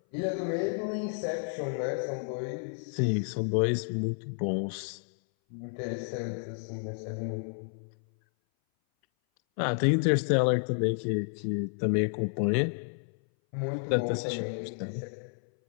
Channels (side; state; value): right; silent; 57 dB below the other